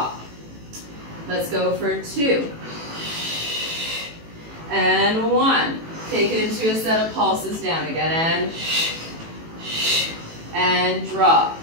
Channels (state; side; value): late; left; 18 ms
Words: Let's go for 2. And 1. Take it into a set of pulses down again. And drop.